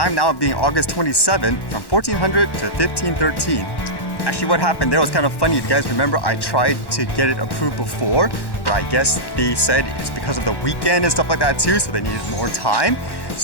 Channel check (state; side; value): late; right; 1.1 ms